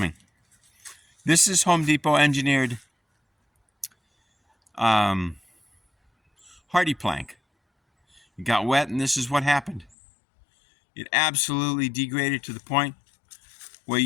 This is Home Depot engineered hardy plank. It got wet and this is what happened. It absolutely degraded to the point where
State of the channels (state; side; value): drops out; right; at 10.0 s